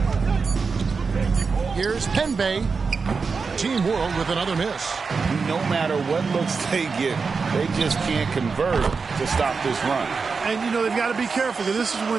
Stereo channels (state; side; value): quieter; left; 4.9 dB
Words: Here's Penbay. Team World with another miss. No matter what looks they get, they just can't convert to stop this run. And, you know, they've got to be careful because this is